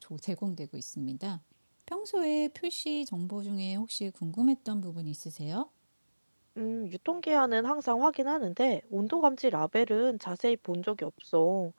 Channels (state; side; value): inverted; both; correlation -1.00